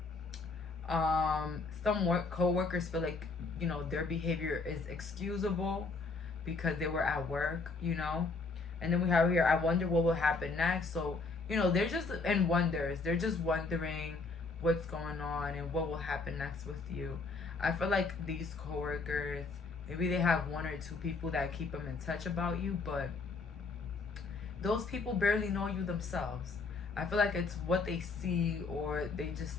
Some co-workers feel like, you know, their behavior is excusable because they were at work, you know. And then we have here, I wonder what will happen next. So, you know, they're just in wonders. They're just wondering what's going on and what will happen next with you. I feel like these coworkers, maybe they have 1 or 2 people that keep them in touch about you, but those people barely know you themselves. I feel like it's what they see or they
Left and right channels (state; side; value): quieter; right; 4.0 dB